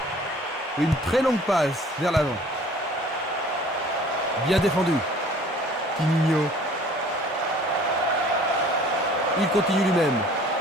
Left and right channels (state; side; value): normal; both; correlation 0.51